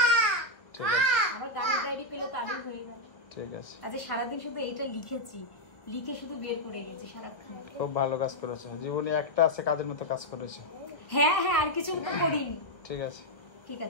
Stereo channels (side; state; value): right; late; 1.5 ms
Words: ঠিক আছে। আমার গানের ডায়েরি পেলে তারই হয়ে গেল। ঠিক আছে। আজ সারাদিন শুধু এইটা লিখেছি, লিখে শুধু বের করে গেছি সারাক্ষণ। খুব ভালো কাজ করেছো, জীবনে একটা আছে কাজের মতো কাজ করেছো। হ্যাঁ হ্যাঁ, আর কিছু তো করিনি। ঠিক আছে, ঠিক